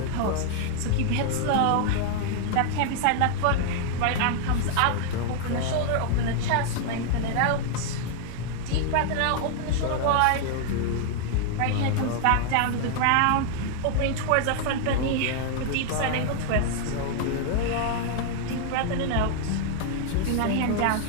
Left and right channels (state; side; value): different; both; correlation 0.00